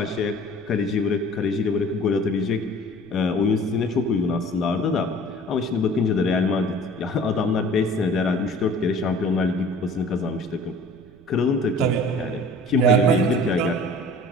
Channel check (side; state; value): right; noise; rumble, 27 dB below the sound